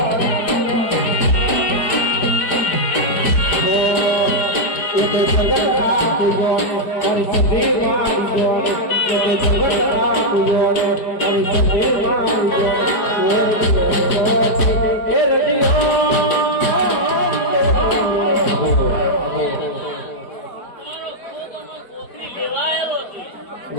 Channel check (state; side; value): late; right; 4.9 ms